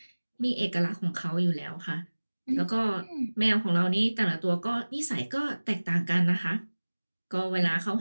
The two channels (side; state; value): both; inverted; correlation -1.00